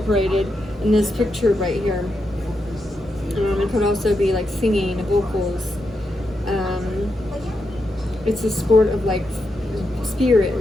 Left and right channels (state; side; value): normal; both; correlation 0.85